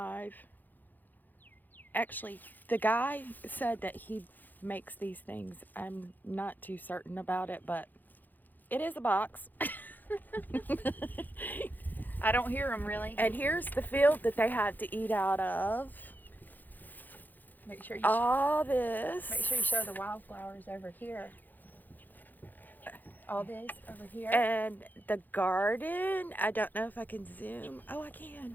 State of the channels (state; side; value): late; right; 0.086 ms